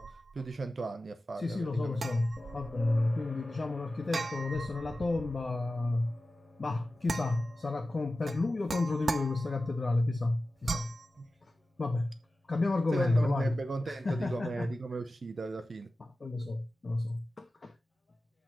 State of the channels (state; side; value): normal; both; correlation 0.94